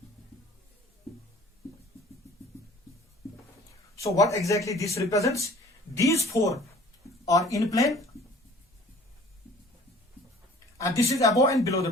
So what exactly this represents? These 4 are in plane and this is above and below the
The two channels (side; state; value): both; normal; correlation 0.49